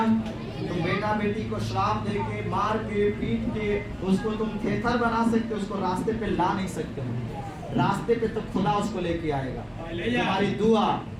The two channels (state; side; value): identical; both; correlation 1.00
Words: तुम बेटा बेटी को श्राप देके, मार के, पीट के उसको तुम थेथर बना सकते हो, उसको रास्ते पे ला नहीं सकते हो। रास्ते पे तो खुदा उसको लेके आएगा। तुम्हारी दुआ,